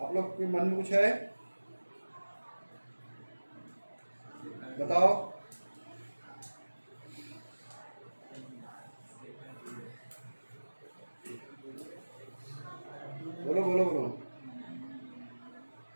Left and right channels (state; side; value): inverted; both; correlation -1.00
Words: आप लोग के मन में कुछ है? बताओ। बोलो बोलो बोलो